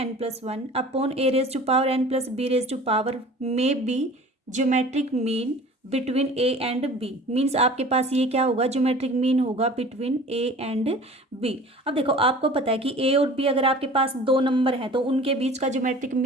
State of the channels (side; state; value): both; normal; correlation 0.44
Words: plus one upon A raise to power N plus B raise to power में be geometric mean between A and B. Means आपके पास ये क्या होगा, geometric mean होगा between A and B. अब देखो आपको पता है कि ए और बी अगर आपके पास दो नंबर हैं तो उनके बीच का ज्योमेट्रिक